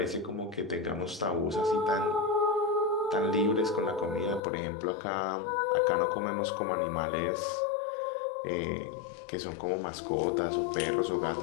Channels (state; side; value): drops out; right; at 4.4 s